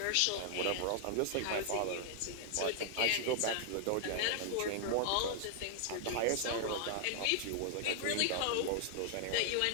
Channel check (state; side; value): different; both; correlation 0.00